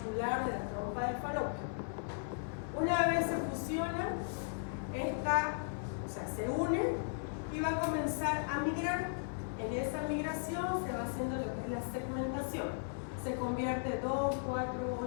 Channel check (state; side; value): silent; right; 53 dB below the other